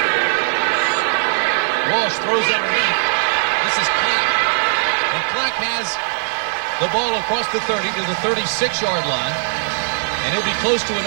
Walsh throws underneath. This is Clack. And Clack has the ball across the 30 to the 36-yard line. And he'll be close to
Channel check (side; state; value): left; silent; digital silence